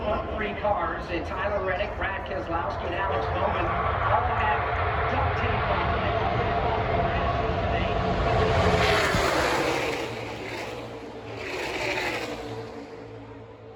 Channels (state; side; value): identical; both; correlation 1.00